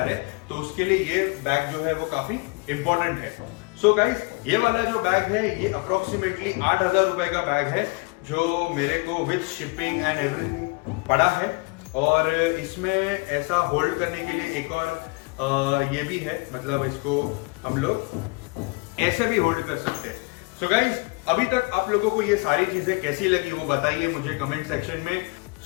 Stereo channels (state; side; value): quieter; right; 28.9 dB